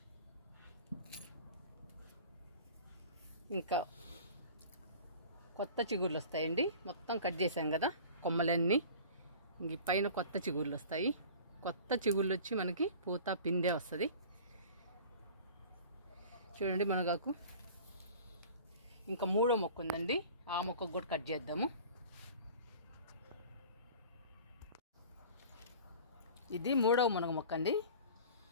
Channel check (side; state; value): both; inverted; correlation -0.41